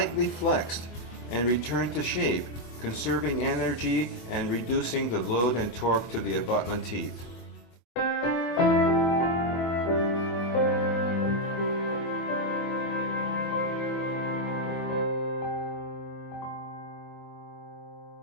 flexed and returned to shape, conserving energy and reducing the load and torque to the abutment teeth.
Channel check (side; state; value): right; late; 24 ms